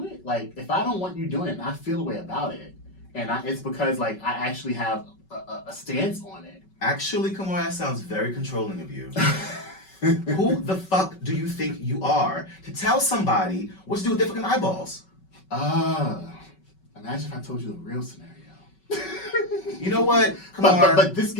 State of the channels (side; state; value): right; late; 5.3 ms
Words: it? Like, if I don't want you doing it, and I feel a way about it, and it's because I actually have a stance on it. Actually, come on, that sounds very controlling of you. Who the fuck do you think you are to tell somebody what to do with their fucking eyeballs? Imagine if I told you the real scenario. You know what? But this